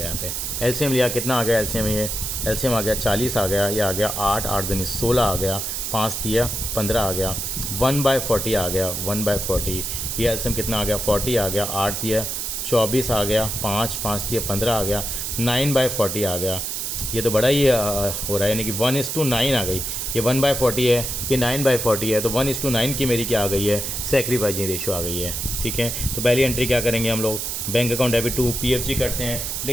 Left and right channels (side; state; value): right; noise; hiss, 3 dB below the sound